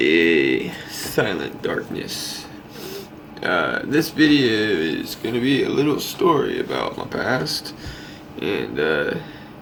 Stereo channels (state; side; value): identical; both; correlation 1.00